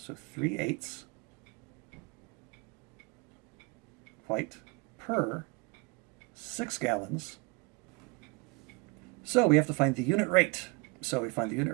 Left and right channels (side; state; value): left; quieter; 27.6 dB